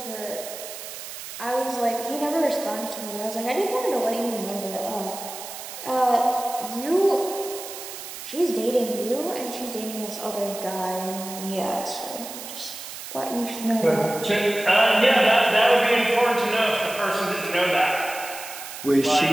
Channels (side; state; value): right; noise; hiss, 11 dB below the sound